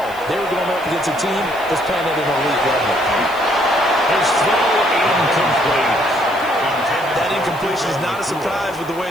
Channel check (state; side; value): noise; left; hiss, 21 dB below the sound